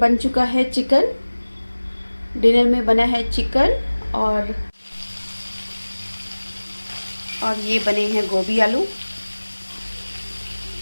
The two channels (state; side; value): inverted; both; correlation -1.00